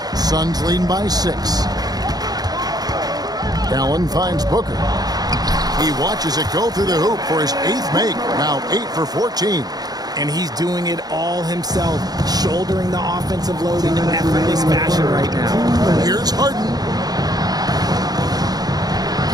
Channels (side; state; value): left; late; 0.19 ms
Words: Suns leading by 6. Allen finds Booker. He watches it go through the hoop for his 8th make. Now 8 for 14. And he's doing it all himself, shouldering the offensive load in an effortless fashion right now. Here's Harden.